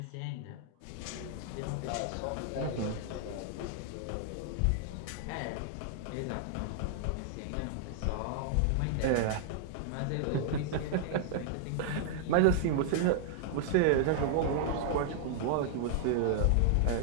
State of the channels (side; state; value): both; different; correlation -0.01